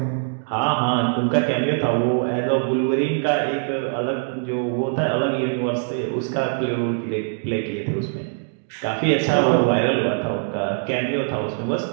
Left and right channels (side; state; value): left; silent; digital silence